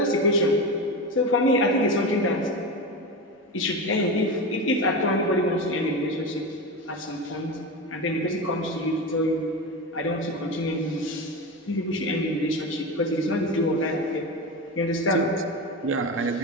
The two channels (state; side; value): normal; both; correlation 0.21